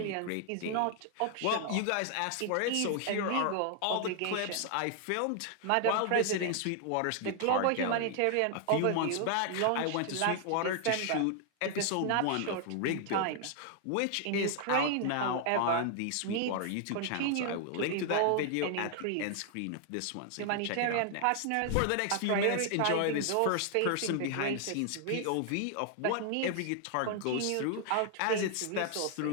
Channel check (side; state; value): both; different; correlation 0.00